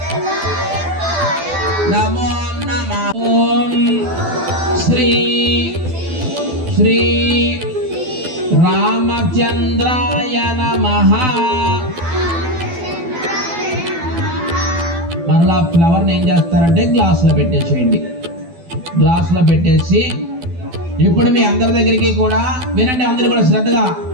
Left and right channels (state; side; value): late; left; 12 ms